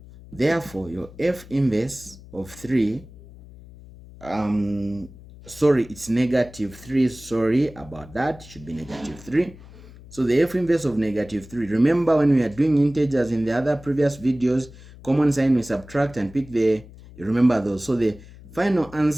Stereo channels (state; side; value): noise; left; hum, 19 dB below the sound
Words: Therefore, your f inverse of 3, sorry, it's negative 3. Sorry about that. It should be negative 3. So the f inverse of negative 3. Remember when we are doing integers in the other previous videos, common sign we subtract and pick you remember those. So the final